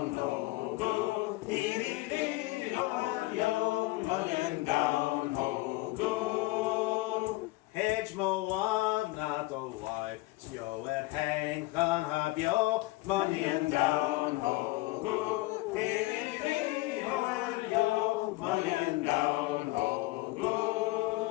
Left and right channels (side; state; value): right; quieter; 20.0 dB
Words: ho, go, hey, yo, money down, ho, go. Hedge mo one, not a wife. Yo at hang on have yo money and down ho go hey yo money and down ho